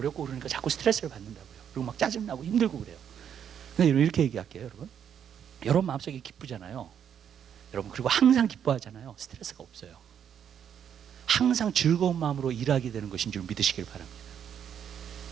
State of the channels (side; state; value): left; quieter; 8.6 dB